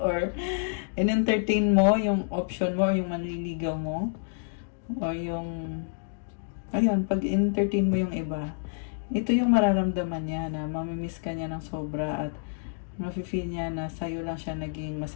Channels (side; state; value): right; silent; digital silence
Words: in-entertain mo yung option mo, or yung manliligaw mo, or yung, ayun, pag in-entertain mo yung iba, ito yung mararamdaman niya na mamimiss ka niya ng sobra at mafe-feel niya na sa'yo lang siya naging